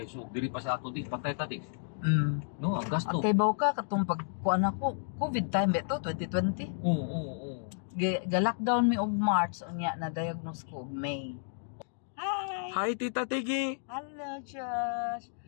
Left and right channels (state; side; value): silent; right; digital silence